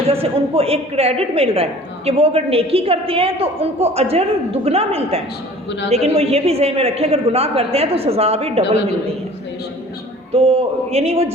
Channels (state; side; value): normal; both; correlation 0.47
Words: سے ان کو ایک کریڈٹ مل رہا ہے کہ وہ اگر نیکی کرتے ہیں تو ان کو اجر دگنا ملتا ہے، لیکن وہ یہ بھی ذہن میں رکھیں اگر گناہ کرتے ہیں تو سزا بھی ڈبل ملتی ہے۔ تو یعنی وہ